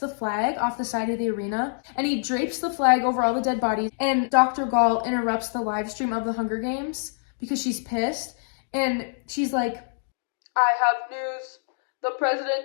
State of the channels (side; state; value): right; silent; digital silence